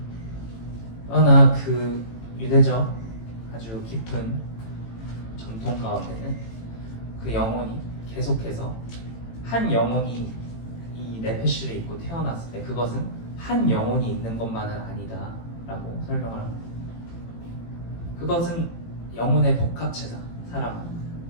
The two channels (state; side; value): late; right; 18 ms